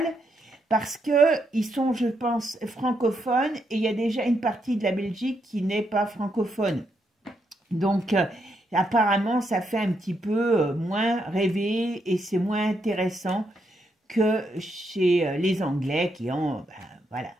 parce qu'ils sont, je pense, francophones et il y a déjà une partie de la Belgique qui n'est pas francophone. Donc, apparemment, ça fait un petit peu moins rêver et c'est moins intéressant que chez les Anglais qui ont... voilà.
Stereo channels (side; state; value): both; normal; correlation 0.79